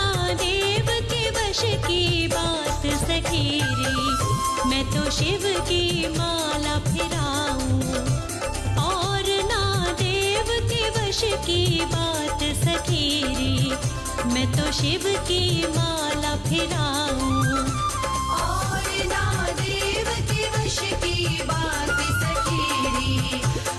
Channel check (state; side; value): identical; both; correlation 1.00